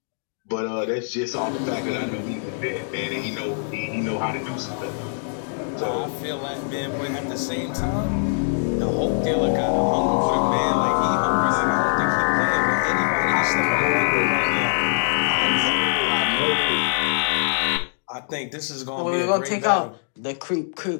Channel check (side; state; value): right; silent; digital silence